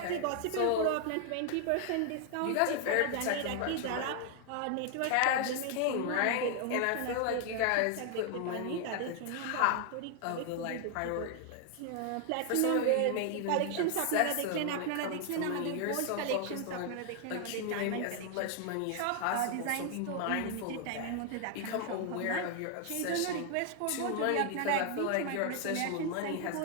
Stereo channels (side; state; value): both; different; correlation 0.00